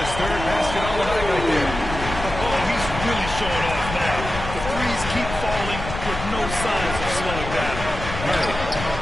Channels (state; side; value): noise; left; rumble, 8 dB below the sound